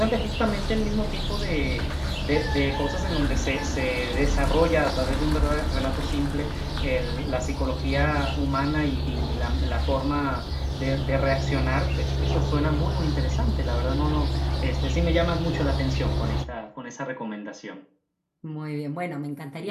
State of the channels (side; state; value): both; identical; correlation 1.00